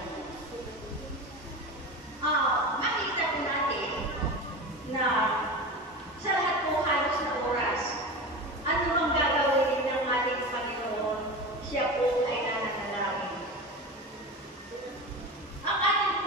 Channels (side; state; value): both; normal; correlation 0.27